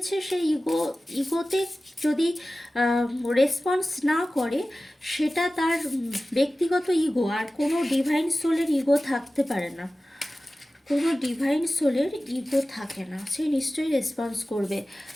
সেই ইগোতে যদি রেসপন্স না করে, সেটা তার ব্যক্তিগত ইগো। আর কোনো ডিভাইন সোলের ইগো থাকতে পারে না, কোনো ডিভাইন সোলের ইগো থাকে না, সে নিশ্চয়ই রেসপন্স করবে।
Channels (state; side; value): normal; both; correlation 0.96